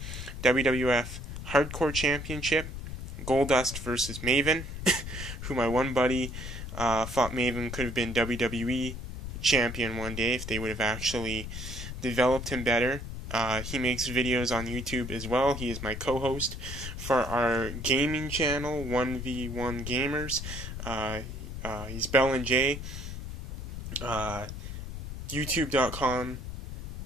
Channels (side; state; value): left; noise; rumble, 8 dB below the sound